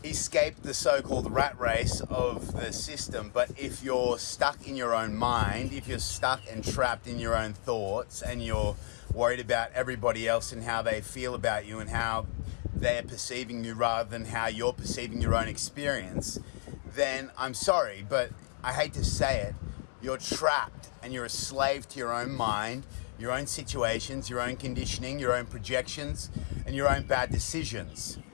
escape the so-called rat race of the system. But if you're stuck in your own mind, if you're stuck and trapped in your own thoughts, and you're worried about everybody else and how they feel about you and how they're perceiving you rather than how you're perceiving your own experience, then I'm sorry, but I hate to say it, you're trapped and you're a slave to your own mind, your own situations, your own conditioning, your own projections, and your own bad decisions.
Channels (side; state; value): right; silent; 56 dB below the other